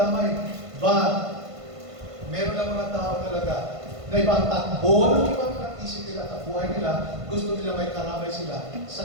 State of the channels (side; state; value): left; late; 1.5 ms